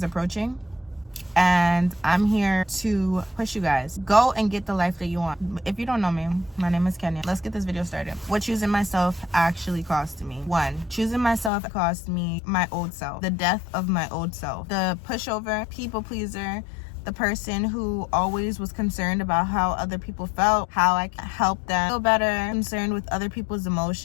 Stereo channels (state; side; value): drops out; right; at 11.5 s